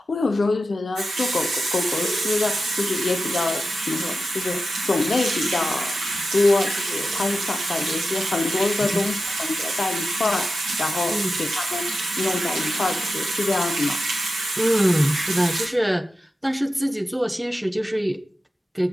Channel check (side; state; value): both; normal; correlation 0.91